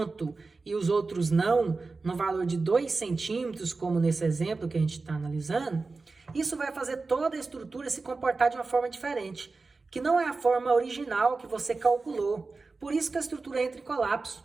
e os outros não, no valor de 2 centímetros, como nesse exemplo que a gente está analisando, isso vai fazer toda a estrutura se comportar de uma forma diferente, que não é a forma original que você calculou. Por isso que a estrutura entra em colapso,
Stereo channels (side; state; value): left; quieter; 3.9 dB